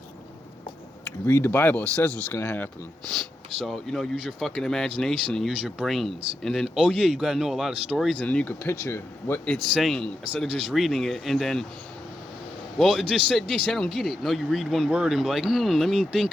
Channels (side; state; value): both; normal; correlation 0.86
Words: You read the Bible, it says what's gonna happen. So, you know, use your fucking imagination and use your brains. And then, oh yeah, you gotta know a lot of stories, and then you could picture what it's saying instead of just reading it and then, well, it just said this, I don't get it. No, you read one word and be like, let me